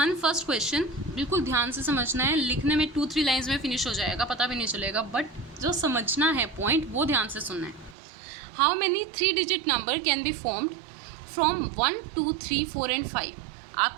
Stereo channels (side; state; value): left; drops out; at 8.0 s